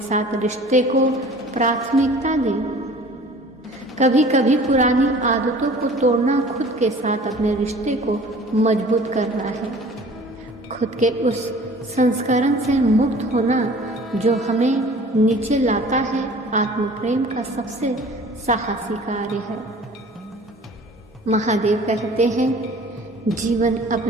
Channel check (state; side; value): normal; both; correlation 0.47